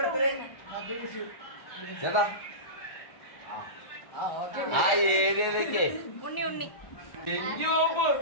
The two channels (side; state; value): right; late; 1.4 ms